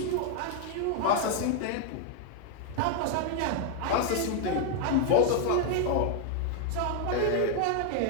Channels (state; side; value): different; both; correlation 0.00